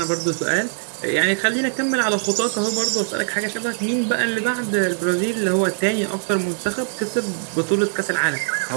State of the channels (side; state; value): left; silent; 64 dB below the other